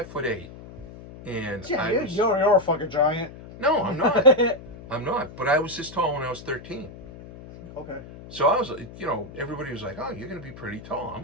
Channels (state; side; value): noise; left; hum, 16 dB below the sound